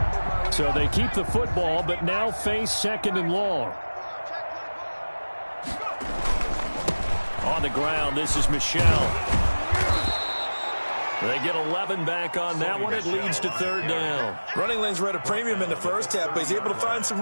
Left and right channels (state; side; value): inverted; both; correlation -1.00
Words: So they keep the football, but now face 2nd and long. On the ground, this is Michelle. They get 11 back on that one. It leads to 3rd down. Running lanes were at a premium in the first half, but he's able to find some